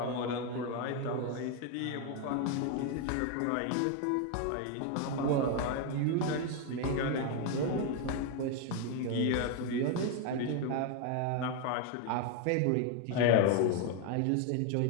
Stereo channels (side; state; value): both; different; correlation 0.01